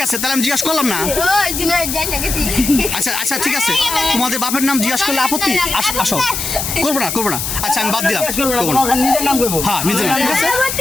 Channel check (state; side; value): noise; left; hiss, 3 dB below the sound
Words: আছে, তাহলে আমি জিজ্ঞাসা করলাম না। ওই জুনাইদ যাই না গেছি। আচ্ছা ঠিক আছে, তোমাদের বাপের নাম জিজ্ঞাসা করলে আপত্তি? আসো, করবো না। আচ্ছা আমি বাদ দিলাম, করবো না। হ্যাঁ নিজের নাম, ঠিক আছে